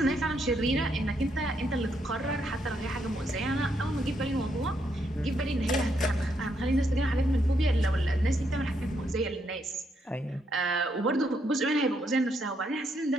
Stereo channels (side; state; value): both; normal; correlation 0.76